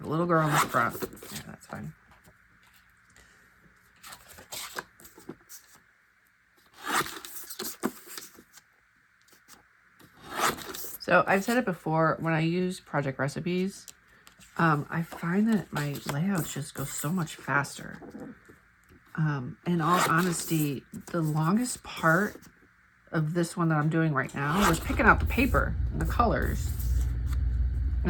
little girl in the front. Yeah, that's fine. So I've said it before, when I use project recipes, I find that my layouts just go so much faster. In all honesty, the longest part of this one that I'm doing right now was picking out the paper and the colors.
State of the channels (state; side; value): identical; both; correlation 1.00